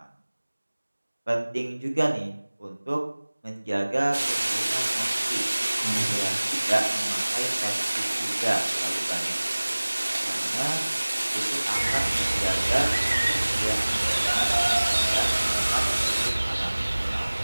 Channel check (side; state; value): both; inverted; correlation -1.00